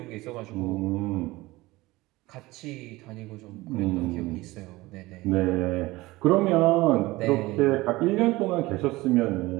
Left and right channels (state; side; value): quieter; left; 19.9 dB